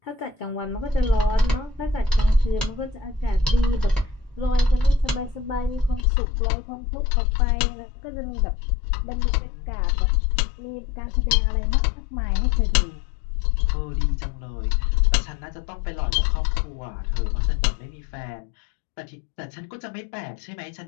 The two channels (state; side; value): drops out; right; at 6.1 s